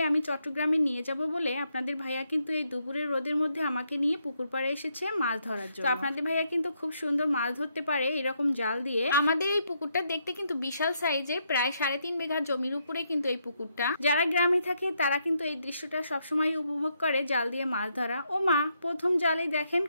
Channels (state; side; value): inverted; both; correlation -0.77